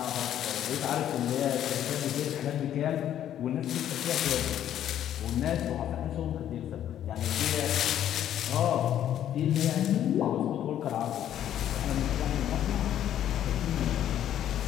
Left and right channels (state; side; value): quieter; right; 10.9 dB